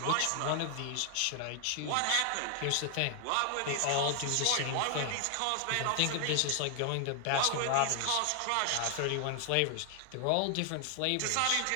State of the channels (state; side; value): different; both; correlation 0.00